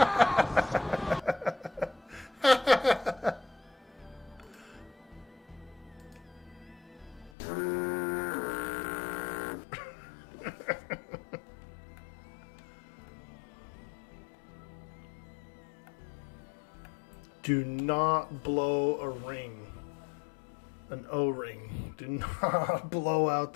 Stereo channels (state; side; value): drops out; right; at 7.3 s